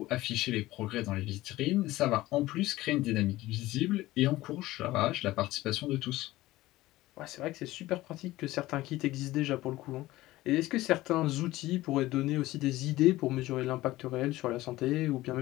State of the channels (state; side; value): quieter; right; 17.3 dB